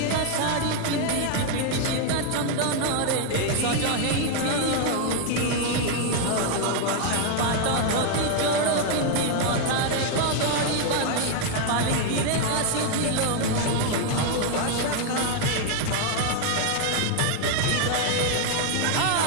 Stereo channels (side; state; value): both; different; correlation 0.01